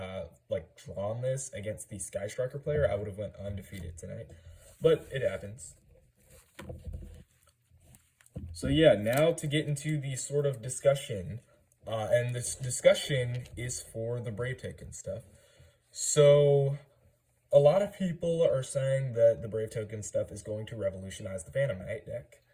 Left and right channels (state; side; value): identical; both; correlation 1.00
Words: like, drawn this against the Sky Striker player, I would have went undefeated tonight. But it happens. So yeah, now to get into the sort of discussion, and this discussion is for the Brave Token stuff. So a lot of people are saying that the Brave Token stuff is going to revolutionize the Phantom Knight deck.